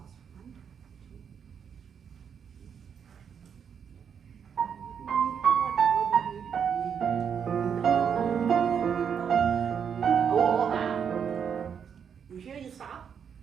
1, 2. You hear you stop?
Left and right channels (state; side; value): quieter; left; 7.4 dB